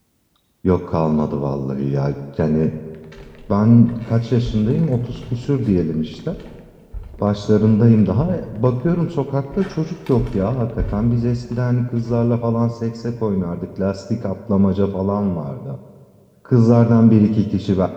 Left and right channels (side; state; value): both; identical; correlation 1.00